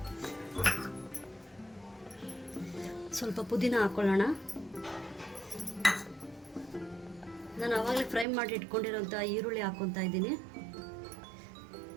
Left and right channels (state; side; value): drops out; left; at 8.2 s